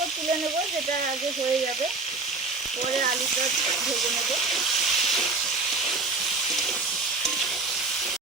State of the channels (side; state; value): left; quieter; 3.8 dB